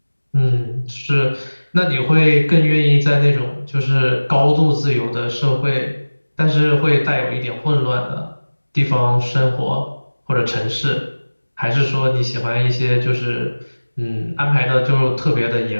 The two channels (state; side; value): inverted; both; correlation -1.00